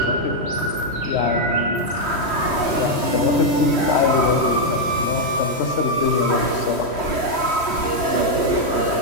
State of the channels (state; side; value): late; right; 3.1 ms